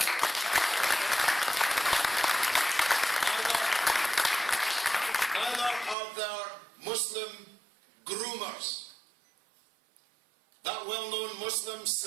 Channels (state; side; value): drops out; left; at 6.0 s